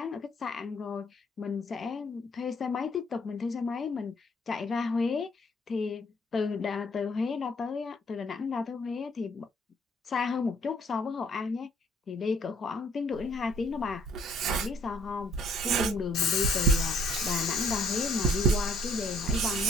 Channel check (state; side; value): normal; both; correlation 0.63